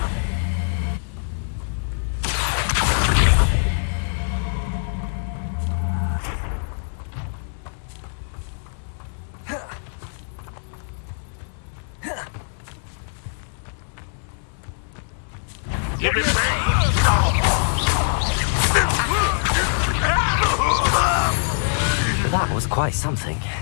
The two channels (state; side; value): silent; right; digital silence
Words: Give it back! That was quite something.